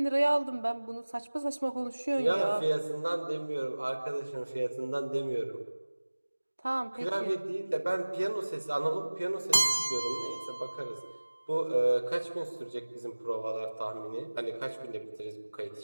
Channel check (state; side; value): inverted; both; correlation -1.00